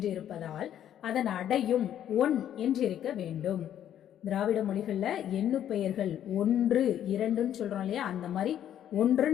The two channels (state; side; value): quieter; right; 10.6 dB